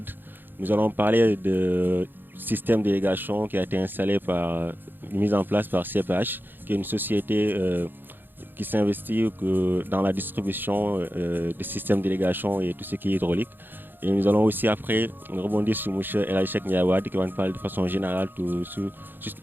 Nous allons parler de système d'irrigation qui a été installé mis en place par CPH, qui est une société qui s'investit dans la distribution des systèmes d'irrigation et tout ce qui est hydraulique. Et nous allons aussi après rebondir sur M. El Hadji Cheikh Ndiaye Wade qui va nous parler de façon générale tout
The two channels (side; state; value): left; late; 0.095 ms